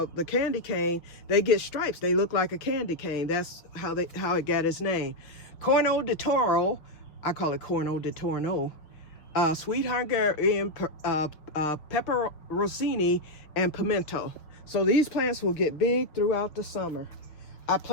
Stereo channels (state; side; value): late; right; 6.1 ms